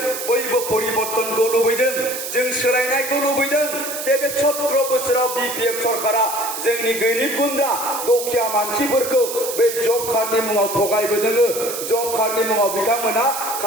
बयबो परिबर्तनखौ लुबैदों जों सोलायनायखौ लुबैदों जे बे 17 बोसोराव बिपिएफ सरकारा जोंनि गोरिब गुन्द्रा दुखिया मानसिफोरखौ बे जब कार्डनि मुङाव थगायबोदों जब कार्डनि मुङाव बिथांमोना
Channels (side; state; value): right; noise; hiss, 6 dB below the sound